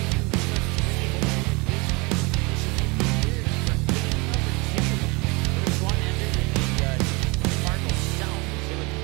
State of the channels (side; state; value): left; quieter; 27.1 dB